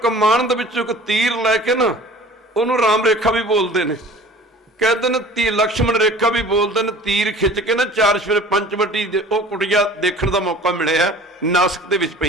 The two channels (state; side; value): normal; both; correlation 0.45